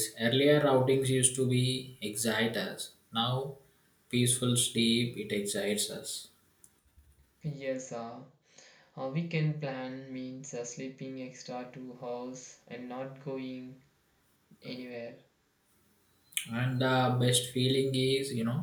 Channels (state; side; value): identical; both; correlation 1.00